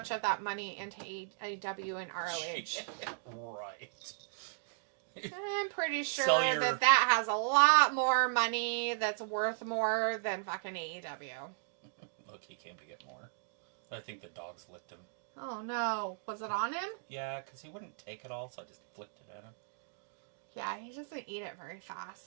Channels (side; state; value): left; silent; digital silence